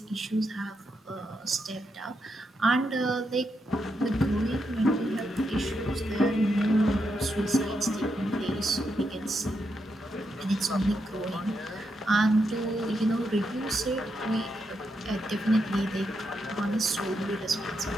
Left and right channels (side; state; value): both; normal; correlation 0.83